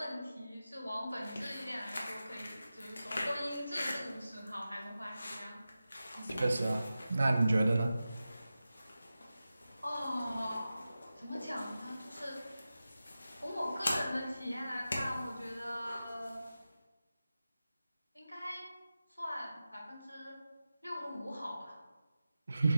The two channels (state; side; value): inverted; both; correlation -0.93